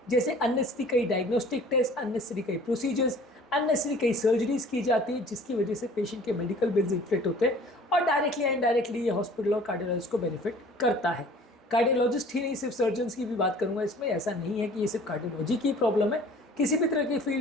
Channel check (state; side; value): normal; both; correlation 0.49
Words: जैसे अननेसेसरी कई डायग्नोस्टिक टेस्ट, अननेसेसरी कई प्रोसीजर्स, अननेसेसरी कई सर्जरीज की जाती है, जिसकी वजह से पेशेंट के मेडिकल बिल्स इन्फ्लेक्ट होते हैं और डायरेक्टली या इनडायरेक्टली ये हॉस्पिटल और कार्डियोलॉजिस्ट को बेनिफिट करता है। कार्डियोलॉजिस्ट ही नहीं, सिर्फ सर्जन्स की भी बात करूंगा इसमें। ऐसा नहीं है कि ये सिर्फ कार्डियोलॉजी की प्रॉब्लम है, किसी भी तरह की